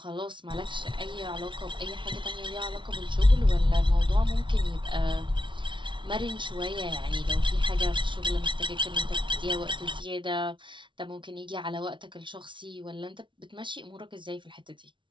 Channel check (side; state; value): left; late; 0.24 ms